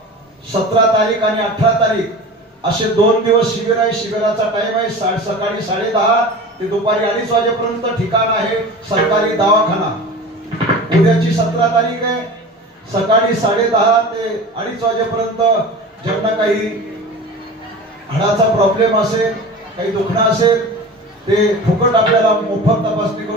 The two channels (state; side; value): normal; both; correlation 0.35